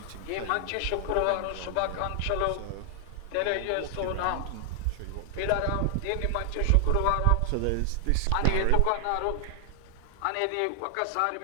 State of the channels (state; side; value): different; both; correlation 0.00